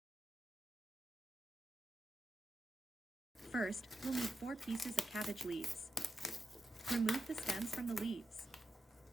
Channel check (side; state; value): both; normal; correlation 0.87